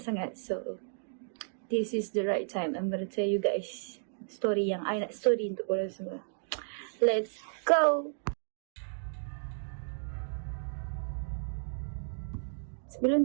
sangat. So, this is the right time. I'm gonna tell you guys story yang I nak story untuk korang semua. Let's go! Sebelum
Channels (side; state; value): left; silent; digital silence